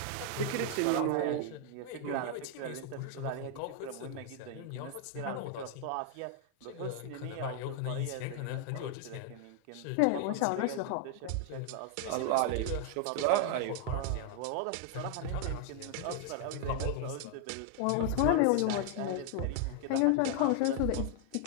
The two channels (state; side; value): different; both; correlation 0.00